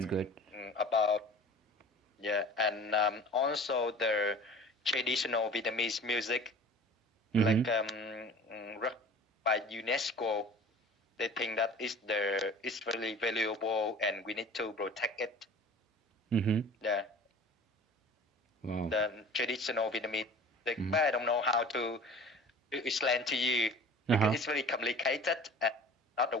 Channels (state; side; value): normal; both; correlation 0.43